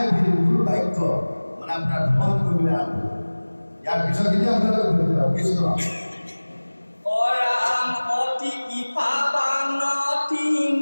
গুৰু বাক্য মানে আপোনাৰ ভ্ৰমণ কৰিবলৈ আৰম্ভ। ইয়াৰ পিছতখিনি আপোনালোকে কৃষ্ণ অৰাম অতি কৃপাবান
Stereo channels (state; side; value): inverted; both; correlation -1.00